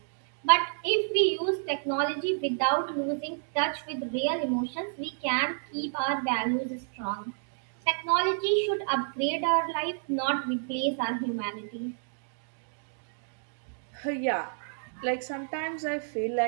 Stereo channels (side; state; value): left; silent; digital silence